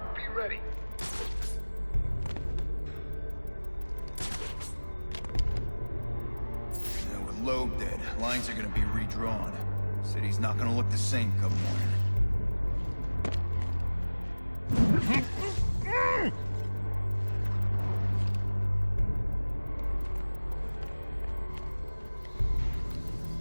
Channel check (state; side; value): inverted; both; correlation -1.00